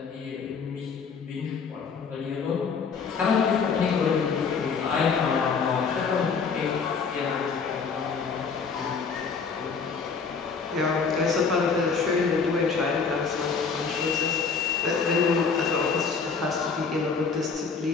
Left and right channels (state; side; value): quieter; right; 5.4 dB